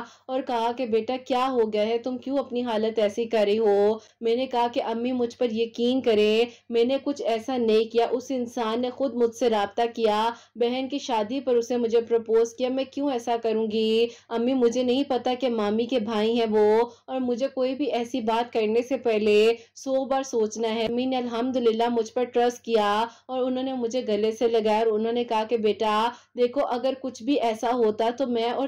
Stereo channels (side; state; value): both; identical; correlation 1.00